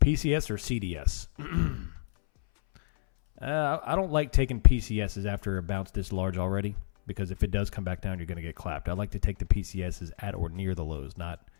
or CDS? I don't like taking PCSs after a bounce this large already, because if it does come back down, you're going to get clapped. I like to take the PCSs at or near the lows, not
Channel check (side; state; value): right; silent; 58 dB below the other